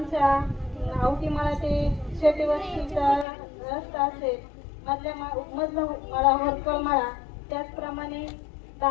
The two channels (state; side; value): drops out; right; at 3.2 s